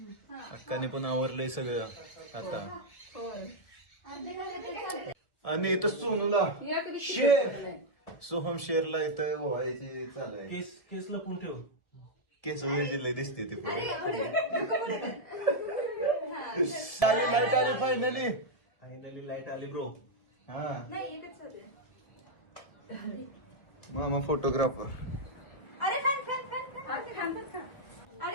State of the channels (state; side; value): late; right; 1.5 ms